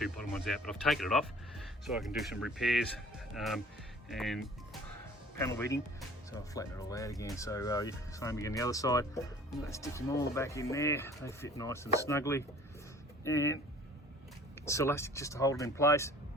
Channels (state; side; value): normal; both; correlation 0.49